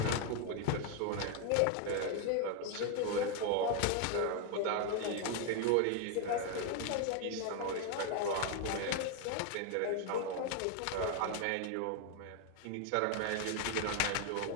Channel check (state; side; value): different; both; correlation 0.01